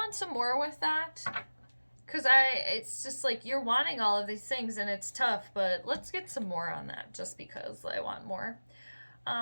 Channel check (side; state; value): both; inverted; correlation -1.00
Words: some more with that, because it's just like you're wanting all of these things and it's tough, but let's get some more on that just because I want more.